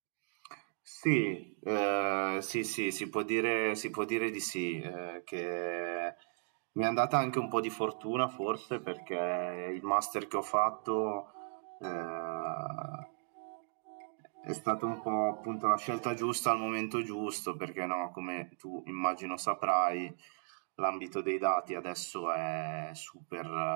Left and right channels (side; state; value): left; silent; 54 dB below the other